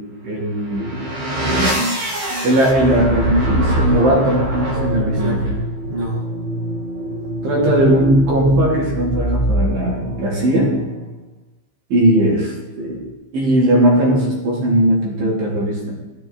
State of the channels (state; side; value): late; left; 15 ms